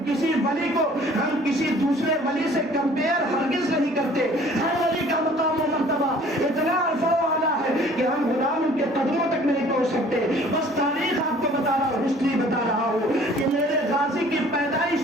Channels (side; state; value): both; normal; correlation 0.53